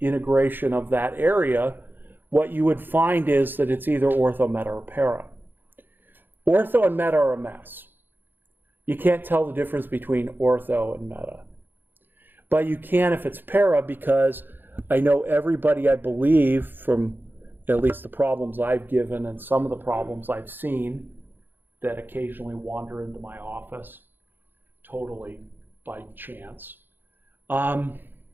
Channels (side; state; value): left; late; 0.094 ms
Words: of that area, what you would find is that it's either ortho, meta, or para. Ortho and meta are a mess. You can't tell the difference between ortho and meta. But you can if it's para, because I know everybody, I believe, from at least the problems I've given and some of the problems I've seen that occasionally wander into my office, totally by chance,